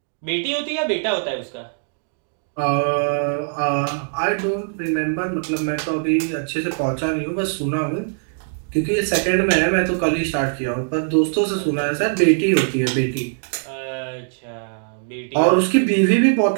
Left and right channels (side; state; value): left; silent; digital silence